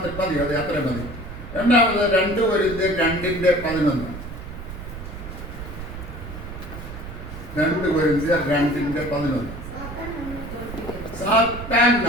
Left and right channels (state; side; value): noise; right; rumble, 11 dB below the sound